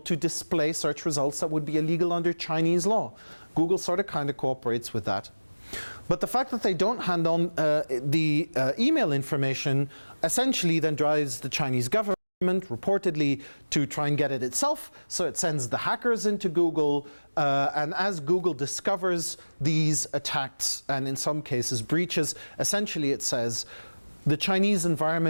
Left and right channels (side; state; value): both; inverted; correlation -1.00